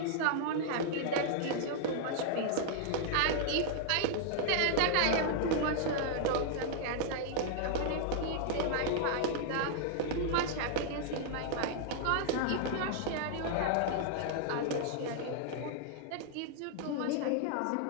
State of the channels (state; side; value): different; both; correlation -0.01